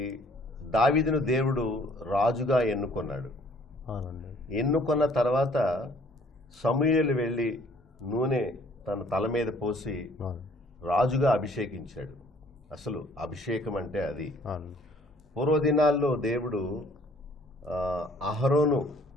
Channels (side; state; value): both; normal; correlation 0.58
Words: దావీదును దేవుడు రాజుగా ఎన్నుకున్నాడు. ఎన్నుకున్న తర్వాత సమూయేలు వెళ్ళి నూనె తన తల మీద పోసి రాజుగా అభిషేకించాడు. అసలు అభిషేకం అంటే అది. పూర్వదినాల్లో దేవుడు అహరోను